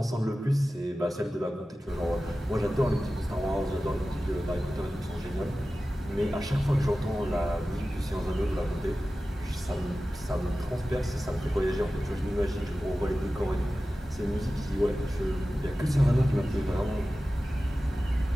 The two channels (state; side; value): normal; both; correlation 0.95